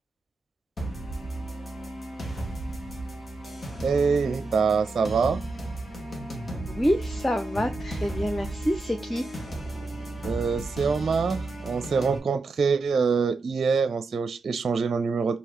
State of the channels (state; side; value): quieter; left; 3.5 dB